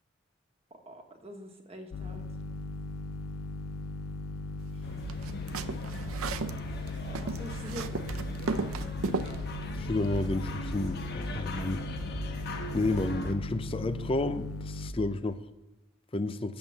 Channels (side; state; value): both; normal; correlation 0.62